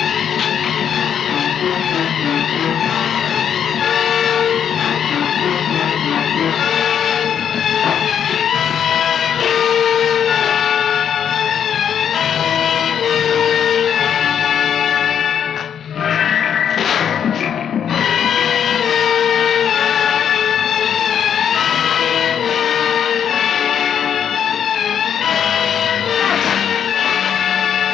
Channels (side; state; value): right; quieter; 8.5 dB